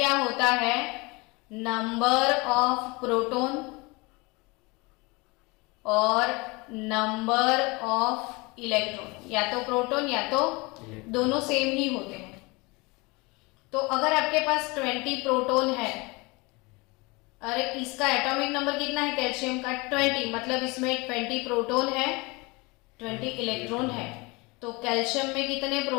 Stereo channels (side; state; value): right; quieter; 25.8 dB